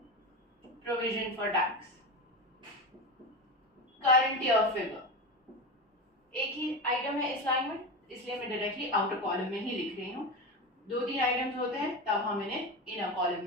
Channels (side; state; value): both; normal; correlation 0.22